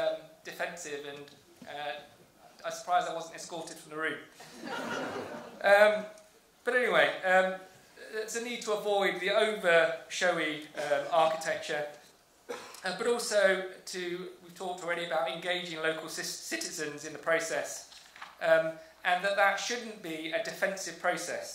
defensive, and I'm surprised I wasn't escorted from the room. But anyway, there's a need to avoid the over-showy architecture, but also we've talked already about engaging local citizens in the process, and that shouldn't be a defensive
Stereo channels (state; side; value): identical; both; correlation 1.00